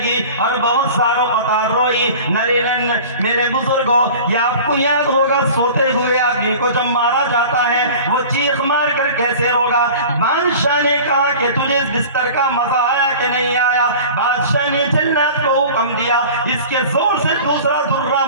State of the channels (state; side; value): inverted; both; correlation -0.40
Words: اور بہت ساروں قطار روئی۔ نرینن میرے بزرگوں، یہ آپ کو یاد ہوگا سوتے ہوئے آدمی کو جب مارا جاتا ہے وہ چیخ مار کر کیسے روگا۔ بادشاہ نے کہا کہ تجھے اس بستر کا مزہ آیا کہ نہیں آیا؟ بادشاہ نے جلاد کو حکم دیا اس کے زور سے دوسرا درہ